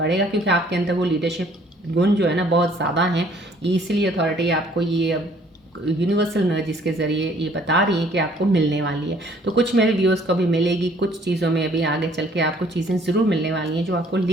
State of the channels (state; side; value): normal; both; correlation 0.59